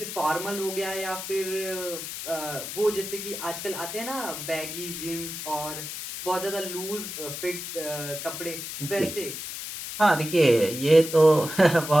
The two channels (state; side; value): noise; left; hiss, 7 dB below the sound